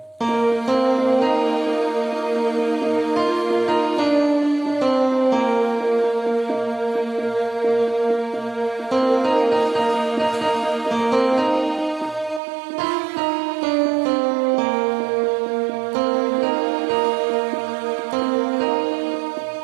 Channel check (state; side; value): drops out; left; at 12.4 s